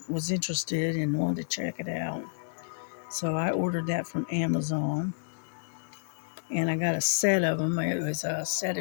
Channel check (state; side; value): silent; right; digital silence